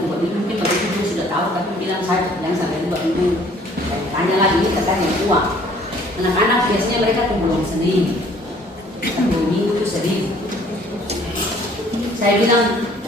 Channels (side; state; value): both; normal; correlation 0.57